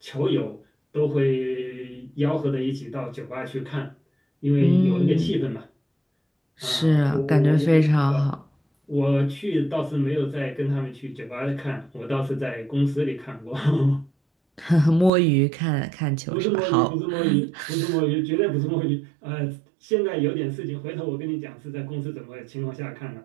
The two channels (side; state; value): left; drops out; at 15.1 s